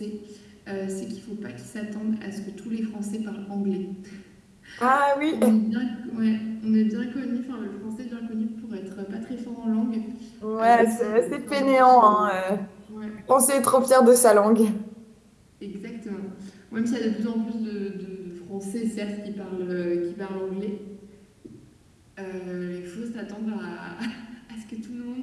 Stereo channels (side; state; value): both; identical; correlation 1.00